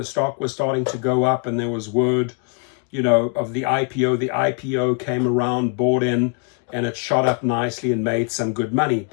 stock was starting to go up, and there was word, of the IPO. The IPO came around, bought in, and it shot up nicely and made some good money.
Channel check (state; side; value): quieter; right; 38.6 dB